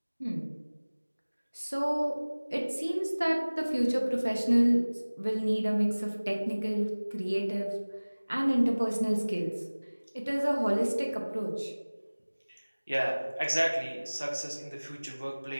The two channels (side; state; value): both; inverted; correlation -1.00